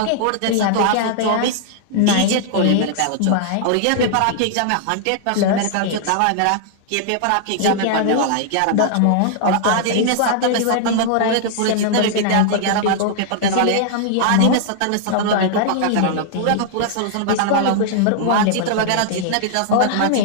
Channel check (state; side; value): different; both; correlation -0.01